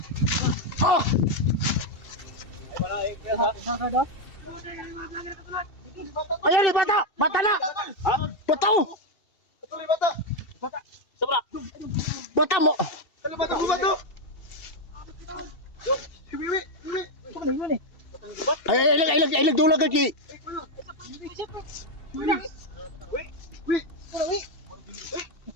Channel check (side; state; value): right; late; 2.7 ms